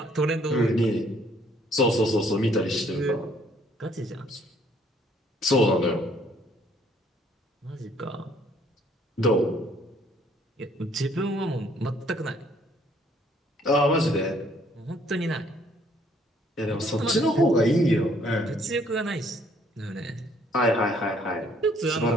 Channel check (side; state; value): both; normal; correlation 0.63